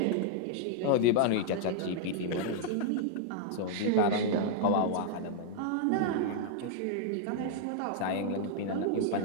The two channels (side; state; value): both; different; correlation -0.01